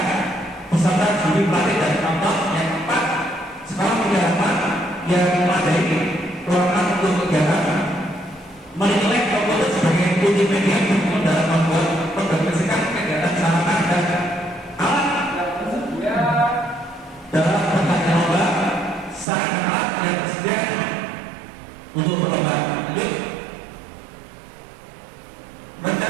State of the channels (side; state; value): left; drops out; at 19.2 s